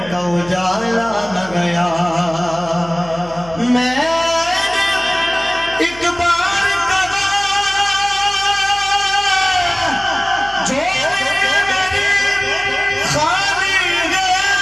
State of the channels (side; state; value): left; noise; hum, 19 dB below the sound